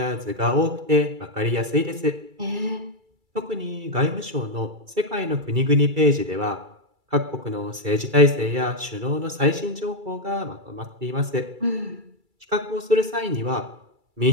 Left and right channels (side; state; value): left; late; 2.3 ms